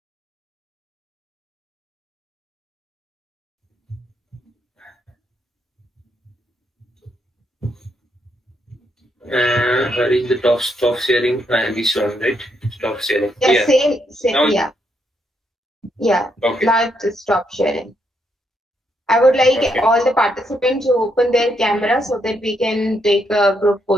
Where is the stop sharing? This one, right? Stop sharing. Yeah. Same. Now, Yeah. Okay. Now to stop sharing. I would like Okay. all the participants to open their camera so that we can take a group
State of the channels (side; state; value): both; normal; correlation 0.77